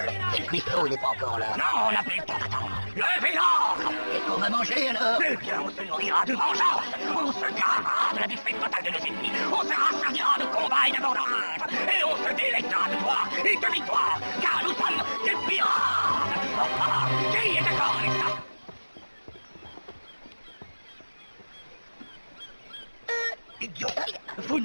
Et le cuistot, il n'est pas encore là. Non, on n'a plus le temps d'attendre. Levez l'ancre. Qu'est-ce qu'on va manger, alors? Eh bien, on se nourrira de vengeance. On se gravera de la défaite totale de nos ennemis. On se rassasiera de combats et d'abondance. Et on se délectera de gloire et de victoire. Car nous sommes des pirates. Qui est d'accord avec ça? Idiot. Vous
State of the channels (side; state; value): both; inverted; correlation -1.00